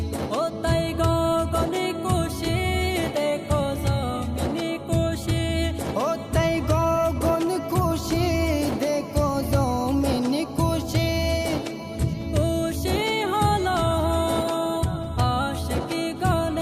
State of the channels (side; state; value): both; identical; correlation 1.00